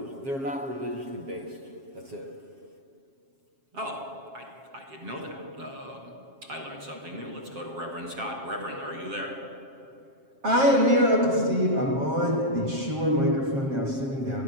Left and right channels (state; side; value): late; left; 7.4 ms